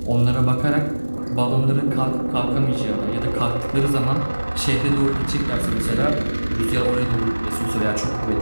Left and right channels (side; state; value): both; inverted; correlation -1.00